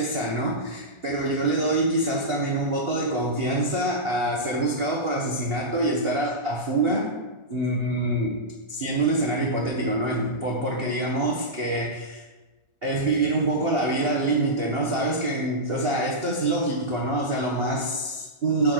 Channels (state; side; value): late; left; 1.4 ms